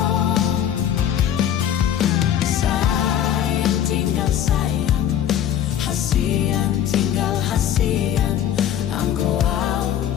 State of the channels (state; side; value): quieter; right; 10.3 dB